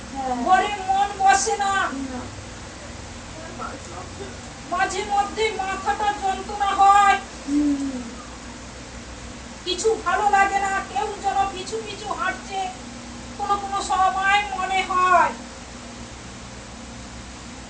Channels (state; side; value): identical; both; correlation 1.00